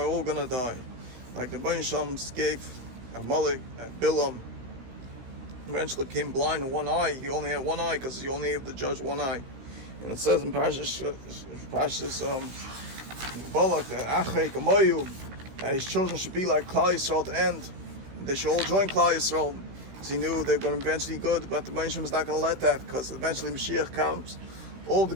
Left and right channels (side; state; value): left; late; 16 ms